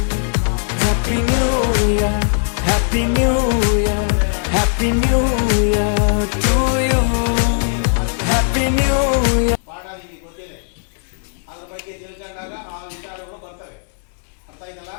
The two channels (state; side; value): silent; right; digital silence